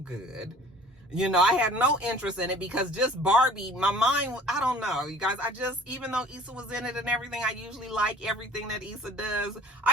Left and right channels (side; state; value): both; normal; correlation 0.49